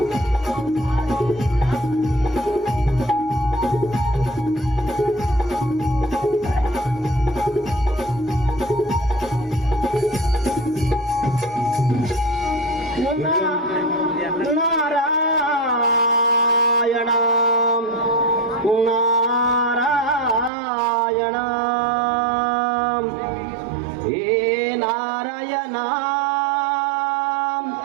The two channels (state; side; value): drops out; left; at 20.5 s